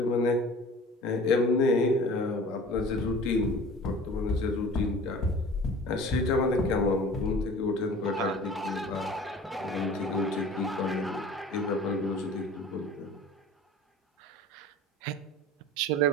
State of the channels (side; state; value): both; normal; correlation 0.43